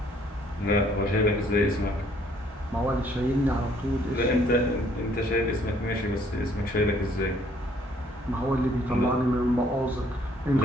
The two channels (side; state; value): both; normal; correlation 0.63